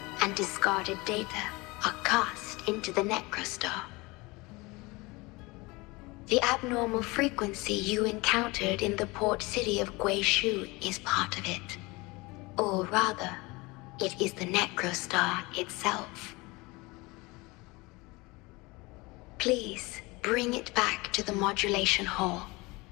and discarded data are cast into the Necrostar. The abnormal frequency you encountered in the port city of Guishu is part of it. Or rather, it is the Necrostar itself. Please bring it back to the modulation hall,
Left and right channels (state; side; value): quieter; right; 23.9 dB